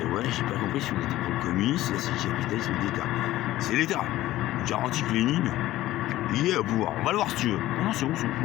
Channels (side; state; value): right; quieter; 15.5 dB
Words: ouais, j'ai pas compris si on était pour le communisme, là c'est le capitalisme d'État. C'est l'État. Je garantis que Lénine, il est au pouvoir. On va le voir si tu veux. Non, c'est bon, je sais